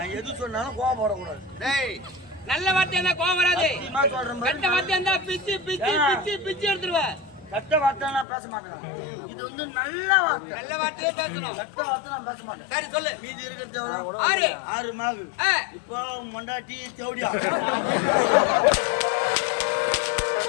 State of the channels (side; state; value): right; drops out; at 8.2 s